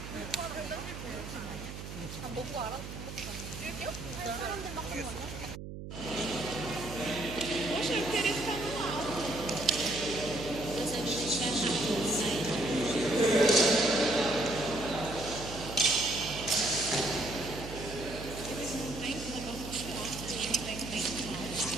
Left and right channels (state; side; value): noise; right; hum, 9 dB below the sound